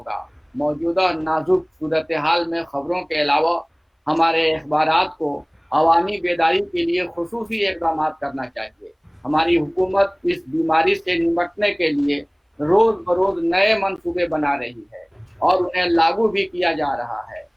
موجودہ نازک صورتحال میں خبروں کے علاوہ ہمارے اخبارات کو عوامی بیداری کے لیے خصوصی اقدامات کرنا چاہیے۔ ہماری حکومت اس بیماری سے نمٹنے کے لیے روز بروز نئے منصوبے بنا رہی ہے اور انہیں لاگو بھی کیا جا رہا ہے،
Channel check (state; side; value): identical; both; correlation 1.00